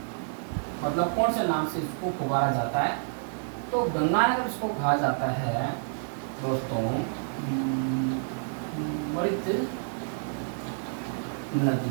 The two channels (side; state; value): left; silent; digital silence